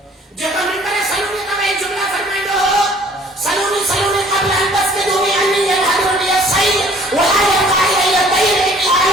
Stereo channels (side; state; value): both; normal; correlation 0.55